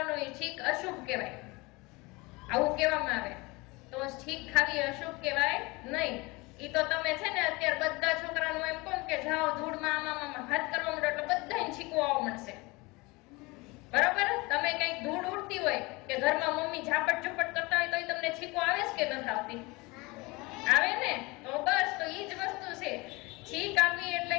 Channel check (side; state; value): right; quieter; 24.4 dB